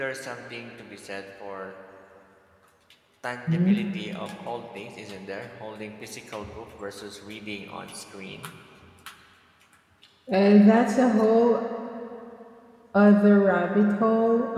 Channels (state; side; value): identical; both; correlation 1.00